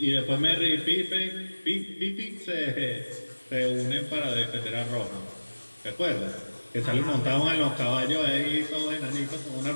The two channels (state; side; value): inverted; both; correlation -1.00